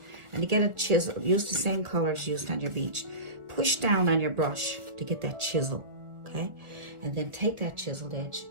And to get a chisel, use the same colors used on your beach. Push down on your brush to get that chisel, okay? And then take that chiseled edge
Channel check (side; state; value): left; late; 1.4 ms